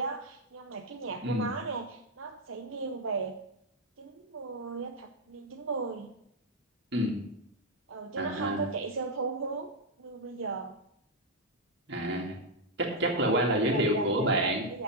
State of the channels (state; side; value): normal; both; correlation 0.01